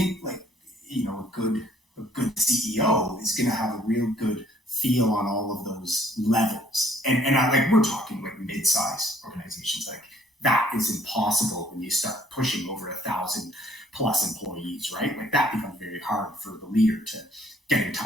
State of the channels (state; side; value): normal; both; correlation 0.62